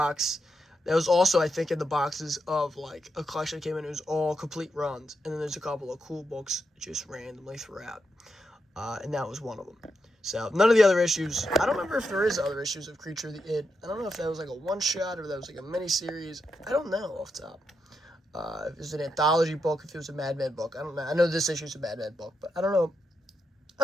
That was also, I think, in the boxes of, like, a collection that came in. It was all complete runs. And then there's a couple of cool books just randomly throughout. And that was one of them. So, none of the other issues. I don't remember if there is other issues of Creature of the Id. I don't know if that was, like, a one-shot or if that was, like, a mini-series. I don't know off the top. If it was an anthology book, if it was a Madman book. I don't know. I know this issue is a Madman book, but I don't know.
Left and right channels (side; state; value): both; normal; correlation 0.84